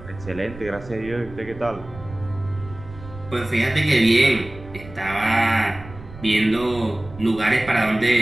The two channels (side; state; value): right; noise; rumble, 16 dB below the sound